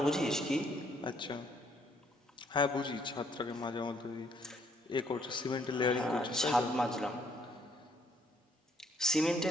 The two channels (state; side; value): normal; both; correlation 0.67